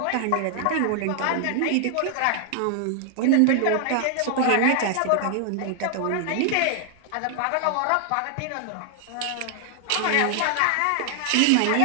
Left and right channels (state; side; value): different; both; correlation 0.00